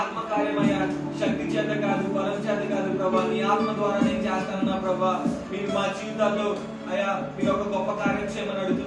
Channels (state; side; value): identical; both; correlation 1.00